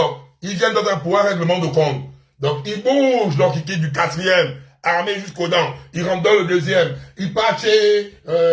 ils viennent dans un pouvoir règlement de compte. Donc, ils bougent, donc ils quittent du 4e, armés jusqu'aux dents. Ils rentrent dans le 2e. Ils partent chez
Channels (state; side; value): identical; both; correlation 1.00